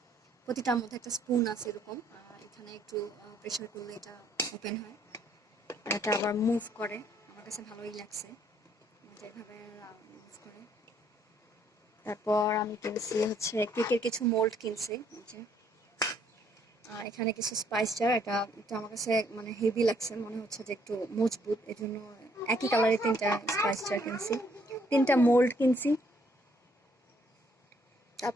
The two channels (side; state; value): both; normal; correlation 0.67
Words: প্রতিটার মধ্যে একটা স্পুন আছে এরকম। এখানে একটু প্রেসার করলে এটা ওপেন হয়। আর এটা আবার মুভ করে। আমার কাছে ভালোই লাগছে, এটা এভাবে মুভ করে। তারপর আমি কিনছি হচ্ছে কেকের কিছু মোল্ড কিনছি, এই যে। আর এখানে কিছু স্পাইস জার। এটা এটা আমার কাছে মানে হেভি লাগছে, মনে হচ্ছে যে একটু মজবুত, এই জন্য একই কালারের তিনটা স্পাইস জার কিনছি, তিনটা মোল্ড কিনছি।